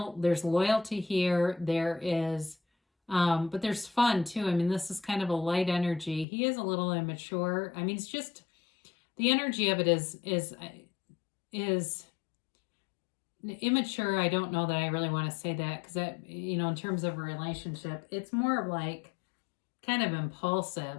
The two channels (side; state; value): right; drops out; at 6.2 s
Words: loyalty here. There is, but there's fun too. I mean, this is kind of a light energy. He is a little immature. I mean, it's just the energy of it is immature. I don't know that I really want to say that, because that, in terms of a relationship, it's more like kind of